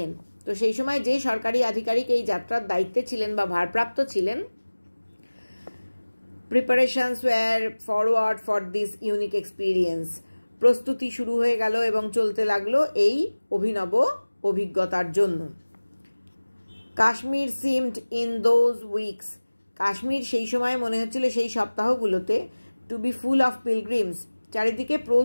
তো সেই সময় যে সরকারি আধিকারিক এই যাত্রার দায়িত্বে ছিলেন বা ভারপ্রাপ্ত ছিলেন, preparations were forward for this unique experience, প্রস্তুতি শুরু হয়ে গেল এবং চলতে লাগলো এই অভিনব অভিজ্ঞতার জন্য। Kashmir seemed in those weeks, Kashmir সেই সময় মনে হচ্ছিল, সেই সপ্তাহগুলোতে, to be full of pilgrims, চারিদিকে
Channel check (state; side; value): inverted; both; correlation -1.00